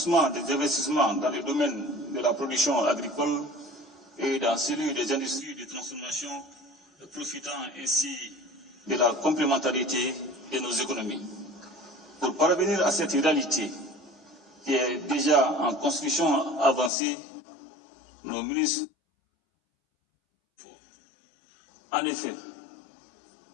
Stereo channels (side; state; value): right; drops out; at 16.9 s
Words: des investissements dans le domaine de la production agricole et dans celui des industries de transformation, profitant ainsi de la complémentarité de nos économies. Pour parvenir à cette réalité qui est déjà en construction avancée, nos ministres, en effet,